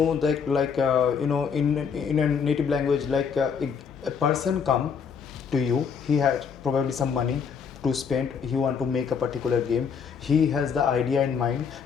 that, in a native language, a person come to you. He has probably some money to spend. He want to make a particular game. He has the idea in mind,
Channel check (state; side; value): quieter; right; 6.5 dB